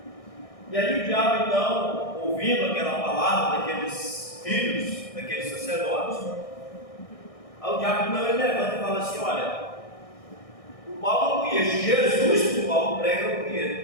E aí o diabo, então, ouvindo aquela palavra daqueles filhos, daqueles sacerdotes, aí o diabo, então, ele levanta e fala assim, olha, o Paulo eu conheço, Jesus que o Paulo prega eu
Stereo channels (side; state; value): right; late; 1.6 ms